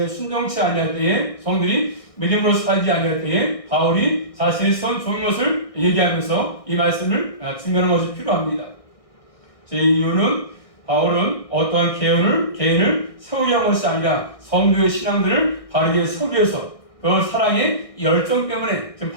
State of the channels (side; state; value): right; late; 1.6 ms